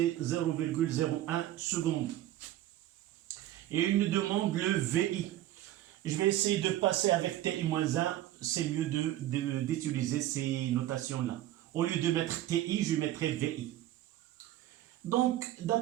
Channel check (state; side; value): quieter; left; 13.8 dB